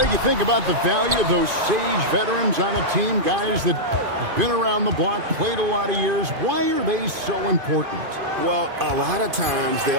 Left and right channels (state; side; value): late; left; 2.5 ms